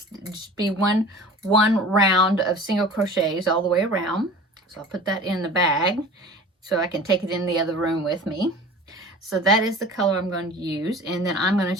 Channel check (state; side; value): normal; both; correlation 0.41